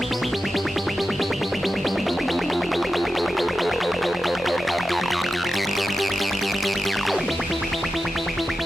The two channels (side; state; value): both; normal; correlation 0.92